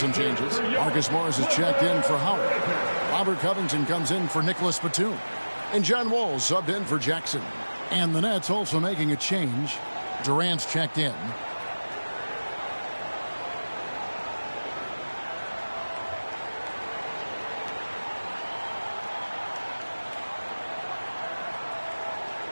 changes. Marcus Morris is checked in for Howard. Robert Covington comes in for Nicholas Batum. And John Wall subbed in for Jackson. And the Nets also making a change. Durant's checked in.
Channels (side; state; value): both; inverted; correlation -1.00